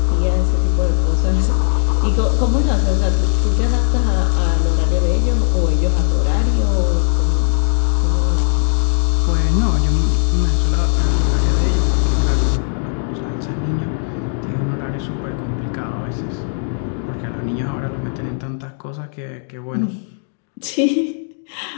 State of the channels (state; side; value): silent; right; digital silence